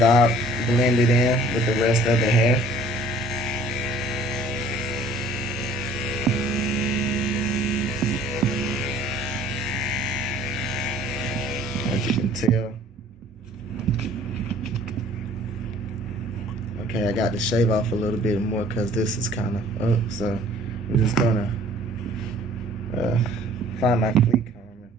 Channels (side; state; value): both; normal; correlation 0.53